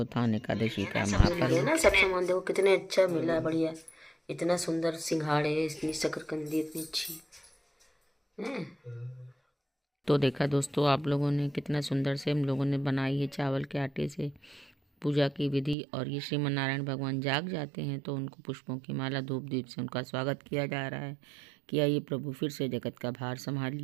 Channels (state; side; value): drops out; left; at 15.8 s